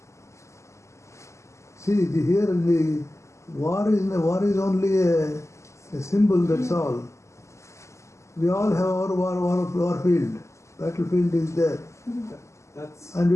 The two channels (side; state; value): right; late; 0.14 ms